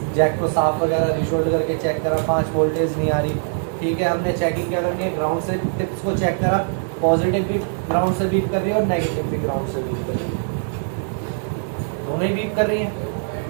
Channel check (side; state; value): left; silent; digital silence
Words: जैक को साफ वगैरह रिशोल्ड करके चेक करा, 5 वोल्टेज नहीं आ रही, ठीक है। हमने चेकिंग क्या करनी है, ग्राउंड से टिप्स को चेक करा, पॉजिटिव भी ग्राउंड से बीप कर रही है और नेगेटिव भी ग्राउंड से बीप कर रही है, दोनों ही बीप कर रही है।